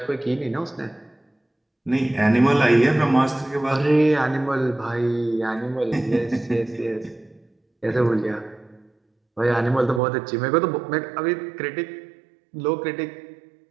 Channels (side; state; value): left; drops out; at 10.0 s